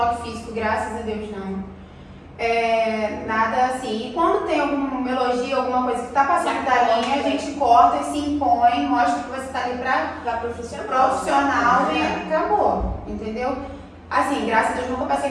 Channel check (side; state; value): both; identical; correlation 1.00